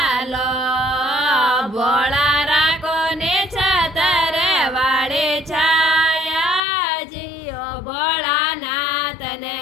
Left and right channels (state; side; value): drops out; right; at 6.6 s